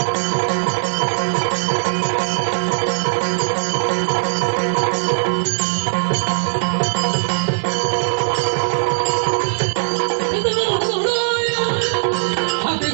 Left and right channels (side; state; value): left; silent; digital silence